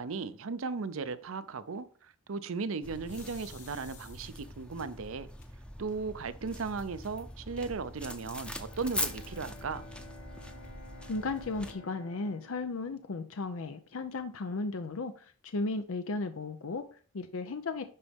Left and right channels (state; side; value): normal; both; correlation 0.11